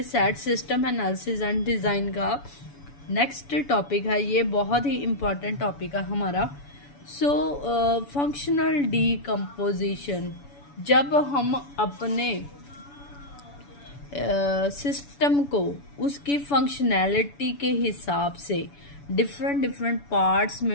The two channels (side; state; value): right; late; 7.0 ms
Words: sad system analysis and design का नेक्स्ट टॉपिक है। ये बहुत ही इम्पॉर्टेंट टॉपिक है हमारा। फंक्शनल डीकम्पोजिशन, जब हम अपने सिस्टम को उसकी फंक्शनैलिटी के हिसाब से डिफरेंट पार्ट्स